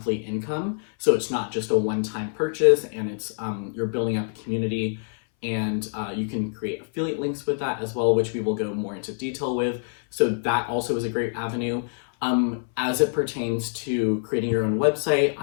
income. So it's not just a one-time purchase, and it's you're building up a community, and you can create affiliate links with that as well, which we will go more into detail with. So that also is a great avenue. As it pertains to creating your own website,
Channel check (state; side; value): silent; right; 60 dB below the other